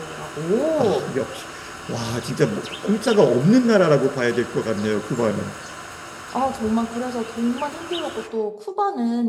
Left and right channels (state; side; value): identical; both; correlation 1.00